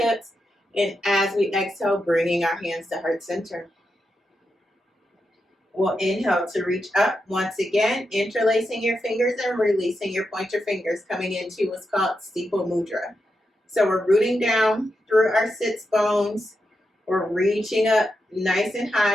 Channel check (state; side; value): normal; both; correlation 0.86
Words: And as we exhale, bringing our hands to heart center. We'll inhale to reach up once again, interlacing your fingers and releasing your pointer fingers, coming into what's called steeple mudra. So we're rooting down through our sits bones. We're reaching up nice and